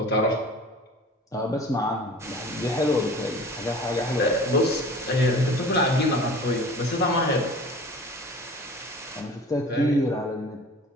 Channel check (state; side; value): normal; both; correlation 0.42